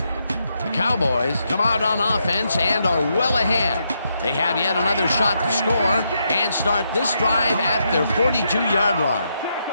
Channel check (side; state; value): both; inverted; correlation -0.80